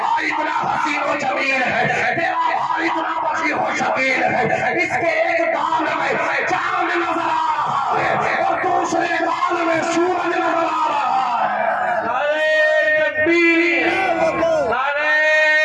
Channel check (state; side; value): identical; both; correlation 1.00